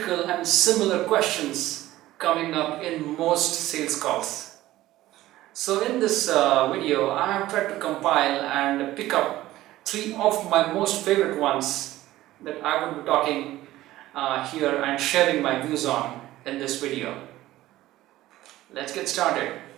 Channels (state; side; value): quieter; left; 15.7 dB